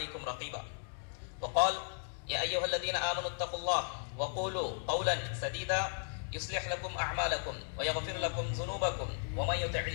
رقيبا. وقال يا أيها الذين آمنوا اتقوا الله وقولوا قولا سديدا يصلح لكم أعمالكم ويغفر لكم ذنوبكم ومن يطع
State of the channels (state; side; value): silent; right; 54 dB below the other